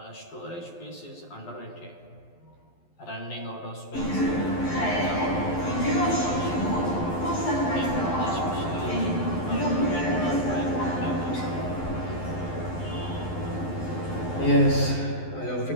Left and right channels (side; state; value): right; late; 11 ms